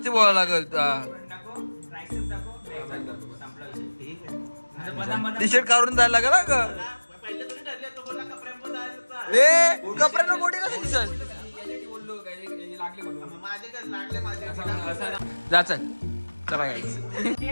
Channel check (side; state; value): both; inverted; correlation -1.00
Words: बोलायला लागल. टी शर्ट काढून जायला लागेल ना ग. ए कपड्यांना मोठी कसं दिसत. जा चल चला